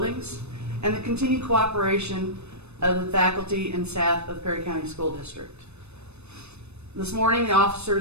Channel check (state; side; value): late; left; 0.81 ms